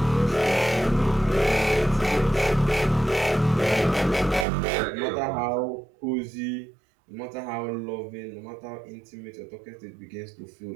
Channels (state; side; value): drops out; left; at 4.5 s